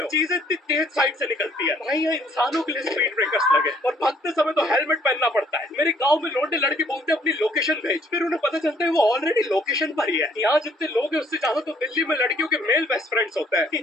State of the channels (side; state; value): both; normal; correlation 0.63